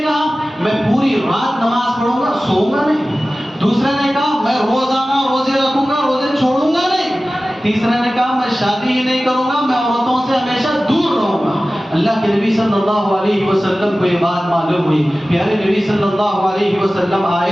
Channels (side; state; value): both; normal; correlation 0.96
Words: میں پوری رات نماز پڑھوں گا، سوؤں گا نہیں، دوسرے نے کہا میں روزانہ روزے رکھوں گا، روزے چھوڑوں گا نہیں، تیسرے نے کہا میں شادی ہی نہیں کروں گا، میں عورتوں سے ہمیشہ دور رہوں گا۔ اللہ کے نبی صلی اللہ علیہ وسلم کو یہ بات معلوم ہوئی، پیارے نبی صلی اللہ علیہ وسلم